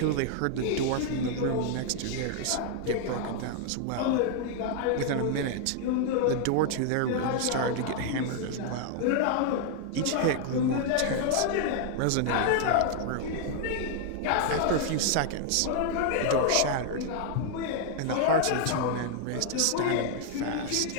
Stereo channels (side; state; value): both; different; correlation 0.00